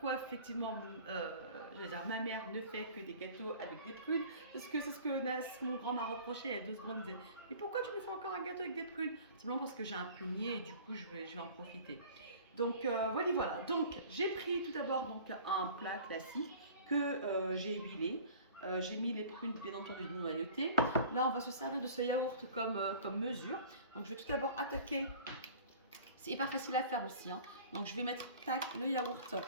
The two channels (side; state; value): both; inverted; correlation -0.45